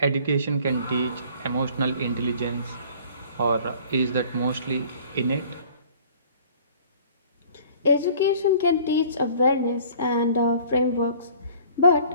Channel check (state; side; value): inverted; both; correlation -0.52